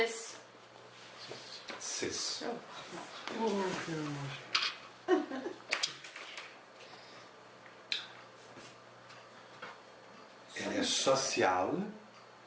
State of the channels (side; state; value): both; identical; correlation 1.00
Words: 6. Elle est sociale.